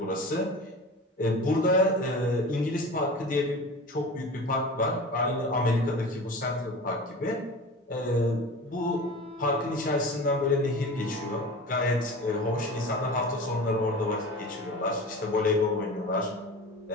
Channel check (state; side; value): normal; both; correlation 0.34